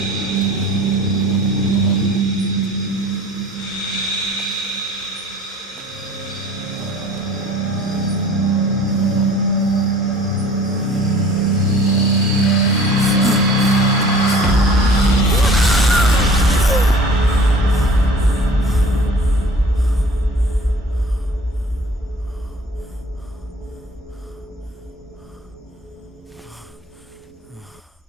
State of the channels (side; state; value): both; normal; correlation 0.47